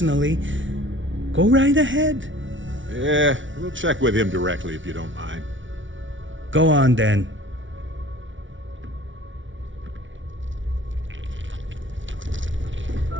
go right ahead. Yeah, we'll check with him directly if you don't mind. Go on then.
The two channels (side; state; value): left; late; 0.56 ms